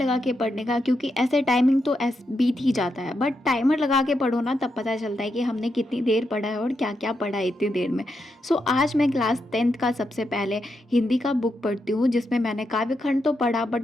के पढ़ने का, क्योंकि ऐसे टाइमिंग तो बीत ही जाता है, बट टाइमर लगा के पढ़ो ना, तब पता चलता है कि हमने कितनी देर पढ़ा है और क्या क्या पढ़ा है इतनी देर में। सो आज मैं क्लास 10th का सबसे पहले हिंदी का बुक पढ़ती हूँ, जिसमें मैंने काव्य खंड तो पढ़ा,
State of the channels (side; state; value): both; normal; correlation 0.84